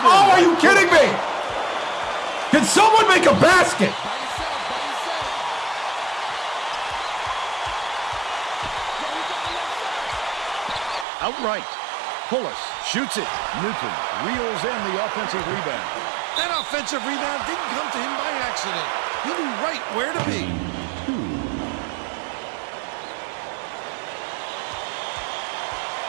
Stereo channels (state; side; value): drops out; left; at 11.1 s